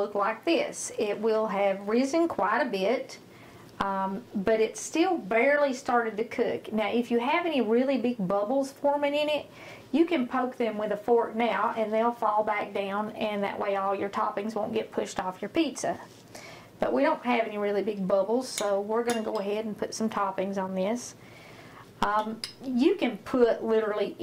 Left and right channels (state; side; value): identical; both; correlation 1.00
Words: like this. It will have risen quite a bit, but it's still barely started to cook. Now if you have any really big bubbles forming in it, you can poke them with a fork now and they'll fall back down, and that way all your toppings won't get pushed off your pizza. But we don't have any really big bubbles, so we're going to go ahead and put some toppings on this. You can put literally